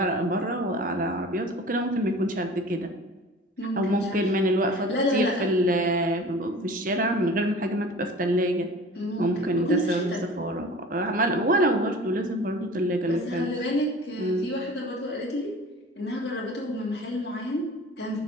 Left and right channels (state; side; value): normal; both; correlation 0.42